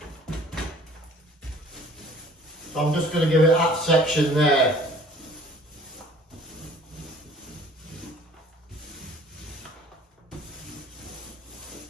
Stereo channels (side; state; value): both; normal; correlation 0.52